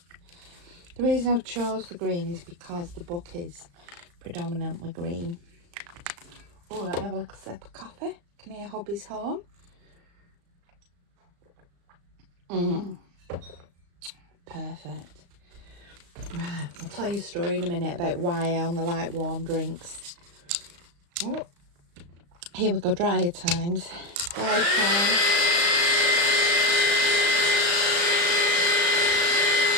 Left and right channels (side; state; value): left; late; 35 ms